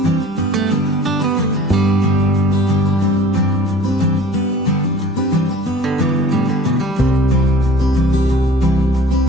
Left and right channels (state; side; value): normal; both; correlation 0.46